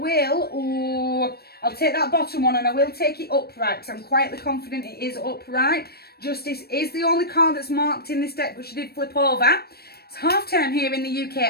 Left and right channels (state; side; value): late; right; 0.46 ms